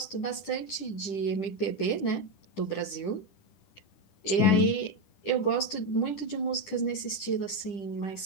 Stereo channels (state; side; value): late; right; 10 ms